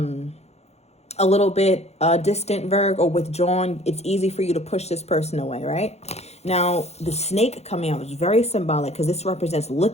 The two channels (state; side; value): late; right; 0.31 ms